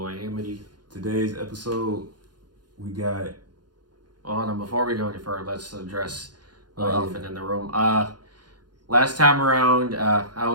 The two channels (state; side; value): late; left; 0.70 ms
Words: Amity. Today's episode, we got... Hold on, before we go any further, let's address the elephant in the room. Last time around, I